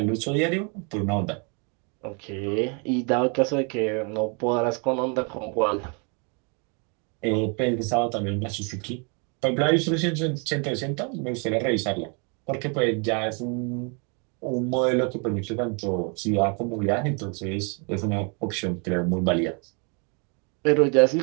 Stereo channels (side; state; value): left; quieter; 35.7 dB